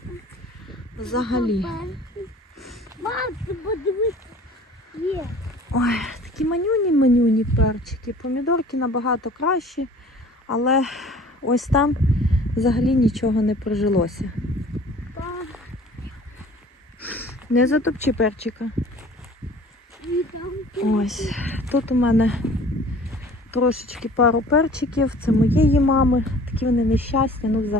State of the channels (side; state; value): both; normal; correlation 0.48